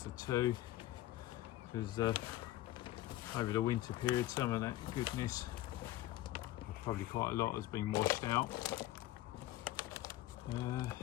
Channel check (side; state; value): right; quieter; 15.3 dB